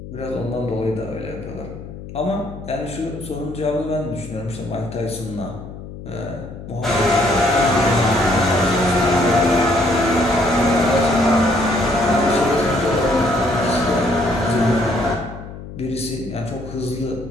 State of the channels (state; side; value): noise; left; hum, 12 dB below the sound